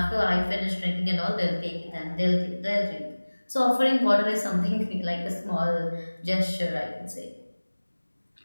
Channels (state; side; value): inverted; both; correlation -1.00